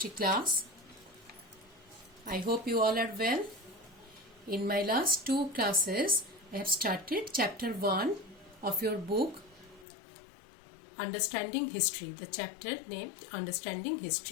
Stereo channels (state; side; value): drops out; right; at 9.9 s